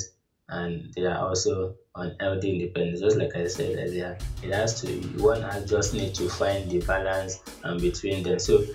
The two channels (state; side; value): identical; both; correlation 1.00